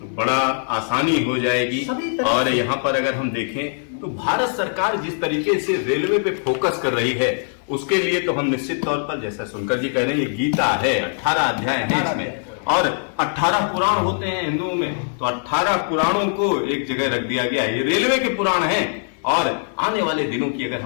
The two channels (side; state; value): right; silent; 59 dB below the other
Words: बड़ा आसानी हो जाएगी। और यहाँ पर अगर हम देखें तो भारत सरकार जिस तरीके से रेलवे पे फोकस कर रही है उसके लिए तो हम निश्चित तौर पर, जैसा सुनकर जी कह रहे हैं, ये गीता है, 18 अध्याय है इसमें और 18 पुराण होते हैं हिंदुओं में, तो 18 पुराणों को एक जगह रख दिया गया है। ये रेलवे के पुराण हैं। और आने वाले दिनों की अगर